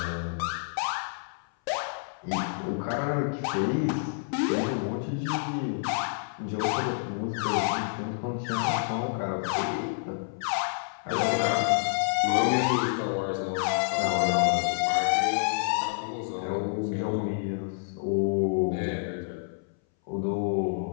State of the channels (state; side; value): silent; right; 59 dB below the other